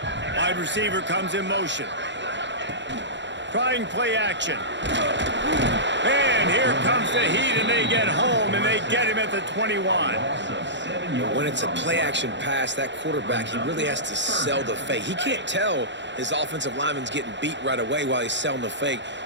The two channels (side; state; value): left; late; 0.52 ms